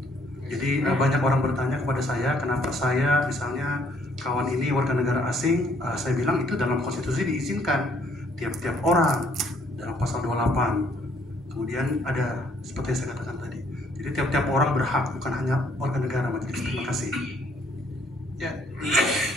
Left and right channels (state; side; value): normal; both; correlation 0.64